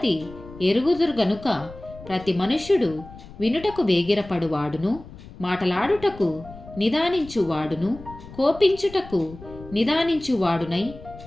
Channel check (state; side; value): noise; left; rumble, 17 dB below the sound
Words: ఎరుగుదురు గనుక ప్రతి మనుష్యుడు వినుటకు వేగిరపడువాడును, మాటలాడుటకు నిదానించువాడును, కోపించుటకు నిదానించువాడునై